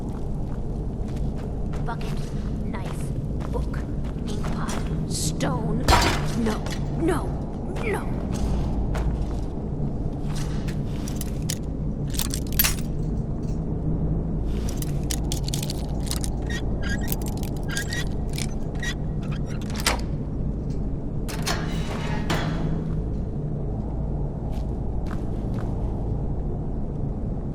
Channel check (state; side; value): identical; both; correlation 1.00